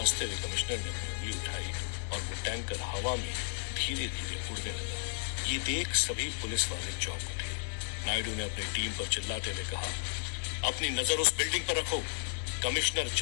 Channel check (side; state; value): right; silent; digital silence